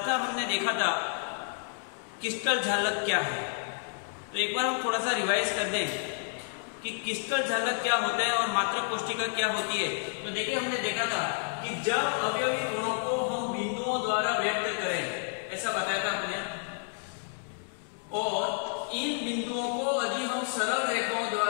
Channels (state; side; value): silent; right; 58 dB below the other